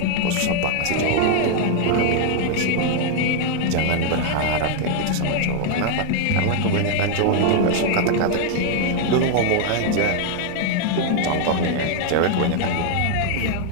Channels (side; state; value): both; different; correlation 0.00